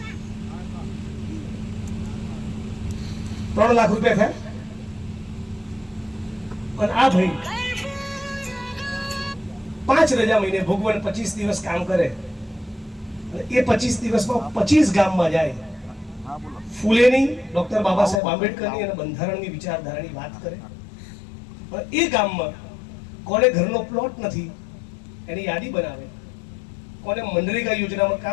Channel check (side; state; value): right; drops out; at 18.2 s